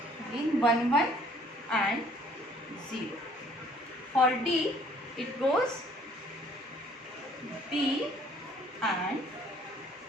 again 1 1 and 0. For D, it goes B and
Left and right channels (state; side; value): normal; both; correlation 0.58